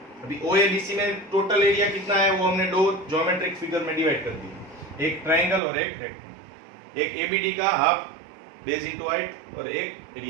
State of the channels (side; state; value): left; drops out; at 5.6 s